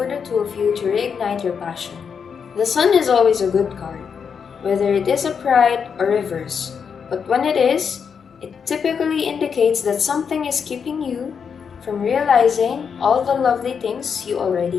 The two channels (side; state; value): right; quieter; 6.6 dB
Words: the two of you to reignite your passion. The Sun is always a good card, whether it is upright or reverse, but when it is, it typically indicates that something is keeping you from realizing all the lovely things you already